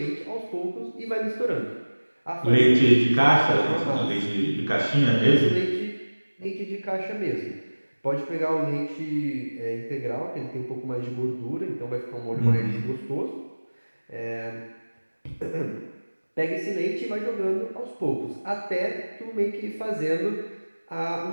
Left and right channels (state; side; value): inverted; both; correlation -1.00